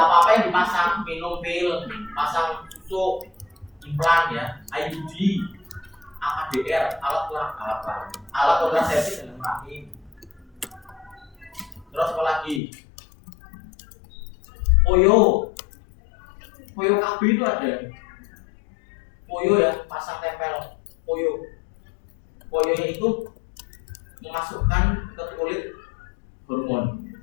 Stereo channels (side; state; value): right; drops out; at 12.6 s